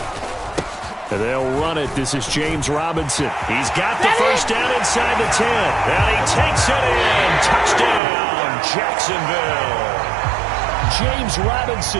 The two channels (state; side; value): drops out; left; at 8.0 s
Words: They'll run it. This is James Robinson. He's got the first down inside the 10. And he takes it in. Touchdown, Jacksonville. James